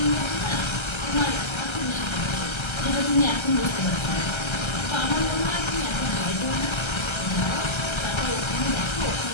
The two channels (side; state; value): right; late; 1.3 ms